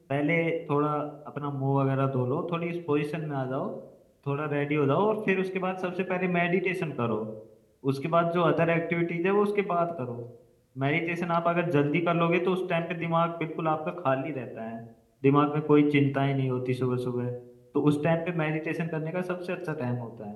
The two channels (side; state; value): both; identical; correlation 1.00